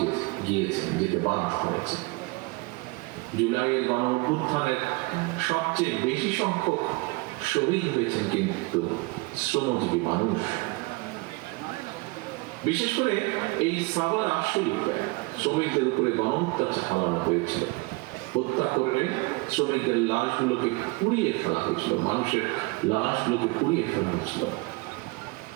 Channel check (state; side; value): quieter; left; 25.5 dB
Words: যেতে বাধ্য হয়েছে। জুলাইয়ের গণঅভ্যুত্থানের সবচেয়ে বেশি সংখ্যক শহীদ হয়েছেন কিন্তু শ্রমজীবী মানুষ। বিশেষ করে এই সাভার আশুলিয়াতে শ্রমিকদের উপরে গণহত্যা চালানো হয়েছিল। হত্যা করে শ্রমিকদের লাশগুলোকে পুড়িয়ে ফেলা হয়েছিল, মানুষের লাশগুলোকে পুড়িয়ে ফেলা হয়েছিল।